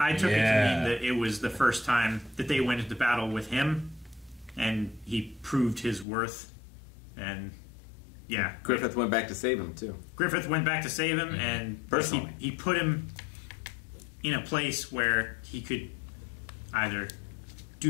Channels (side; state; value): right; drops out; at 6.1 s